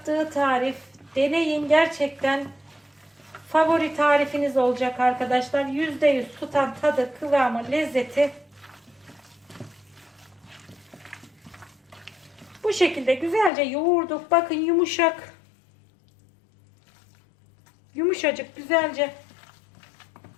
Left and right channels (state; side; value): drops out; right; at 13.5 s